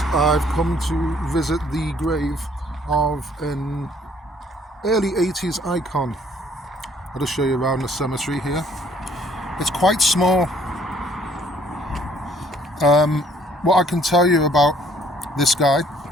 I've come to visit the grave of an early 80s icon. I'll just show you around the cemetery here. It's quite small. What I can tell you about this guy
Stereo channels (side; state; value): both; normal; correlation 0.61